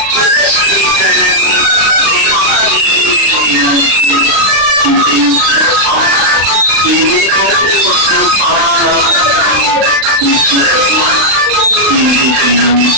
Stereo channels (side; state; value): left; late; 36 ms